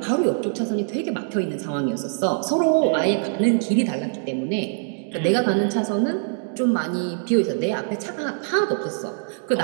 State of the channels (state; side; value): silent; left; digital silence